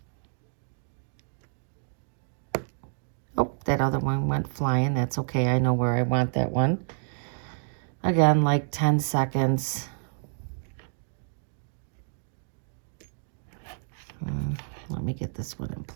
Oh, that other one went flying. That's okay. I know where I want that one. Again, like 10 seconds. Let me get this one in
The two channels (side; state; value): left; silent; digital silence